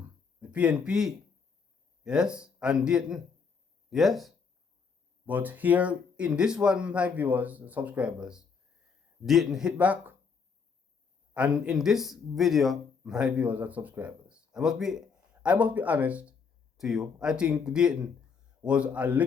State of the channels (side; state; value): right; quieter; 5.6 dB